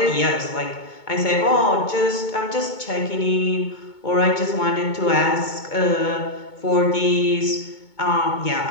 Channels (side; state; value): right; late; 2.2 ms